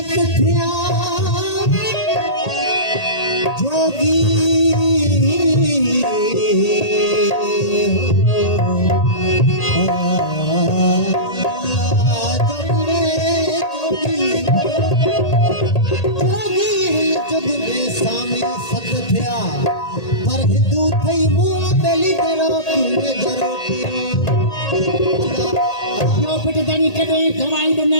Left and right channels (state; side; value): late; right; 1.8 ms